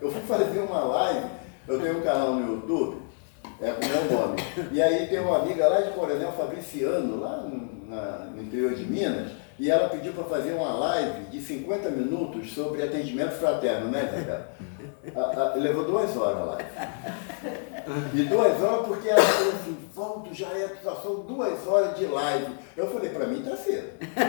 Eu fui fazer uma live, eu tenho um canal no YouTube, com o meu nome. E aí tem uma amiga lá de Coronel Fabriciano, lá no interior de Minas, e ela pediu para fazer uma live de 50 minutos sobre atendimento fraterno, né, Zé? Levou 2 horas a live. E 2 horas porque ela falou assim, Valdo, já são 2 horas de live. Eu falei, para mim tá cedo.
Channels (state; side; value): silent; right; 60 dB below the other